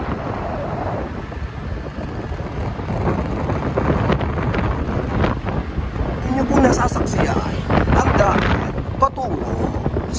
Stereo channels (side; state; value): both; identical; correlation 1.00